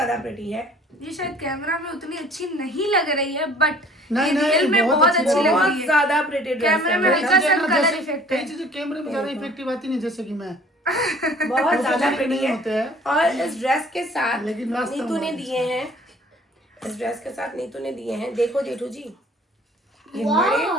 प्रिटी है। ये शायद कैमरा में उतनी अच्छी नहीं लग रही है, बट नहीं, रियल में बहुत बहुत अच्छी अच्छी लग बहुत रही है। ज़्यादा प्रिटी ड्रेस कैमरे में है, हल्का सा जैसे- कलर इफेक्ट कई है। चीजें कैमरे में ज्यादा इफेक्टिव आती नहीं, जैसे कि मैं बहुत ज़्यादा नहीं प्रिटी होते है। हैं। और इस ड्रेस के साथ लेकिन वास्तव में नीतू ने दिए हैं, इस ड्रेस के साथ नीतू ने दिए हैं, देखो जेठू जी, ये बड़े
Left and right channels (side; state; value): both; normal; correlation 0.52